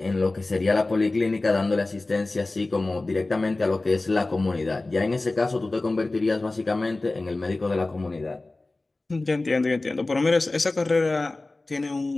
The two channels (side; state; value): right; quieter; 3.1 dB